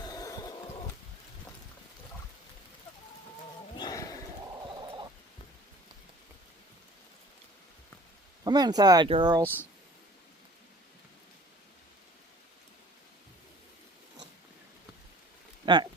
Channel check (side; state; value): both; normal; correlation 0.48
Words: Come inside, girls. All right.